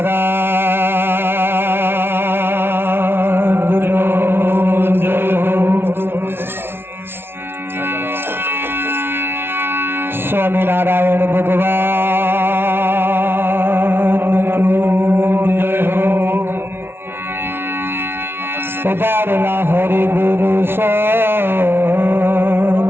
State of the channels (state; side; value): late; left; 0.11 ms